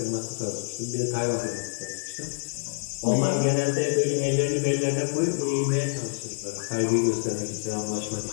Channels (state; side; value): silent; right; digital silence